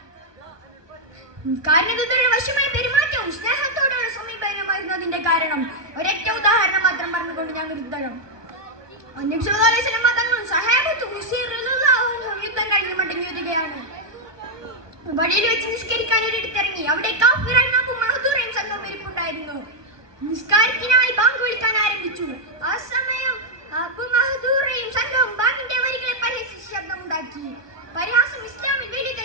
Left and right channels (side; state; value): left; late; 1.3 ms